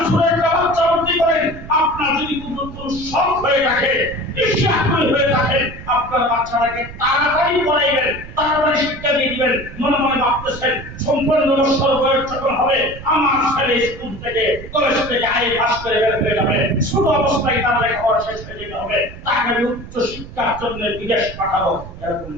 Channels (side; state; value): right; noise; rumble, 14 dB below the sound